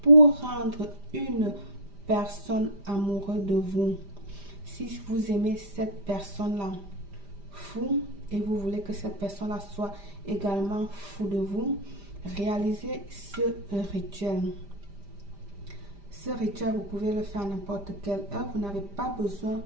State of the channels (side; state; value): left; late; 5.0 ms